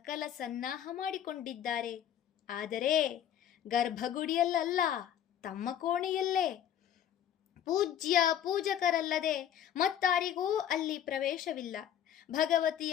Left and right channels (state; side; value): quieter; right; 10.1 dB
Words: ಸನ್ನಾಹ ಮಾಡಿಕೊಂಡಿದ್ದಾರೆ. ಆದರೆ ಗರ್ಭಗುಡಿಯಲ್ಲ, ತಮ್ಮ ಕೋಣೆಯಲ್ಲೇ. ಪೂಜ್ಯ ಪೂಜಕರಲ್ಲದೆ ಮತ್ತಾರಿಗೂ ಅಲ್ಲಿ ಪ್ರವೇಶವಿಲ್ಲ.